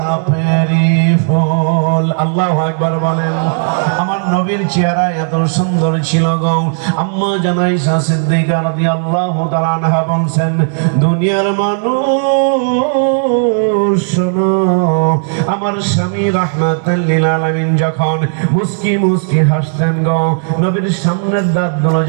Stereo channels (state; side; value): silent; left; digital silence